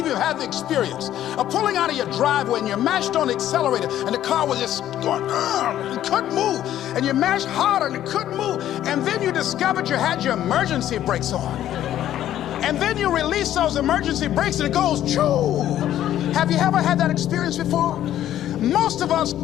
you have the experience of pulling out of your driveway and you mashed on the accelerator and the car was just going, it couldn't move, and you mashed harder and it couldn't move, and then you discovered you had your emergency brakes on, and then you release those emergency brakes and it goes, choo. Have you ever had that experience before? Most of us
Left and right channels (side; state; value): right; quieter; 12.0 dB